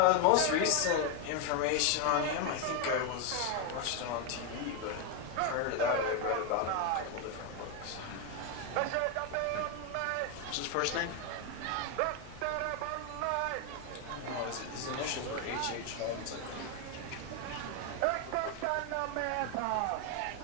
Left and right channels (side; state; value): both; different; correlation 0.01